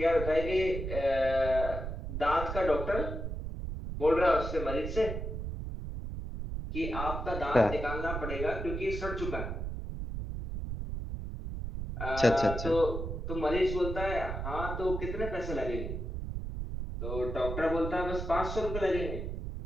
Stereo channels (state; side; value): noise; right; rumble, 5 dB below the sound